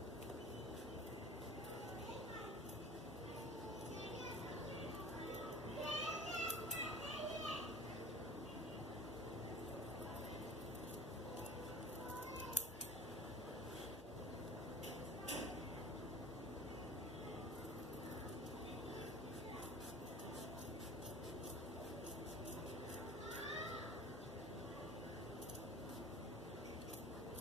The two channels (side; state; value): both; normal; correlation 0.41